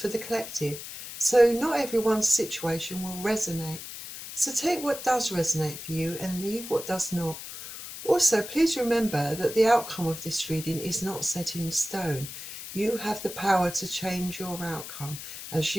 the collective, so not everyone's situation will resonate. So take what does resonate for you and leave what does not. Also, please remember that the outcome of this reading is not set in stone. You have the power to change your outcome as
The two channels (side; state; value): left; noise; hiss, 10 dB below the sound